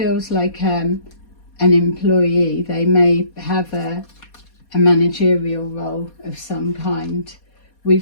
like an employee. They may have a managerial role of some kind.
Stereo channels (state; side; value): late; right; 4.2 ms